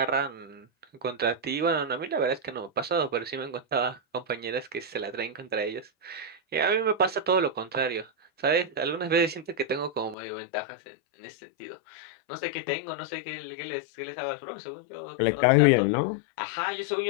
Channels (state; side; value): drops out; right; at 10.2 s